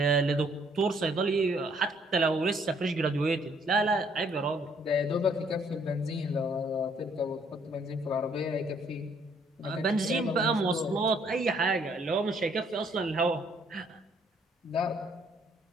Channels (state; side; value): normal; both; correlation 0.65